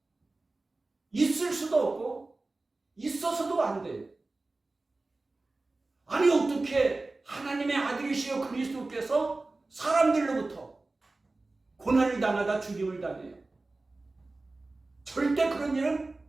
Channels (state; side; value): quieter; left; 3.3 dB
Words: 있을 수도 없고 있어서도 안 돼요. 아니 어떻게 하나님의 아들이시여 그리스도께서 사람들로부터 고난을 당하다 죽임을 당해요? 절대 그런 일은